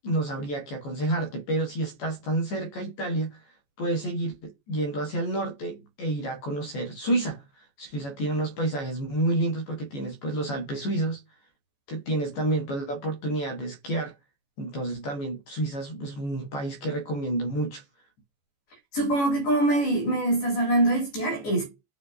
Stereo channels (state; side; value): late; right; 14 ms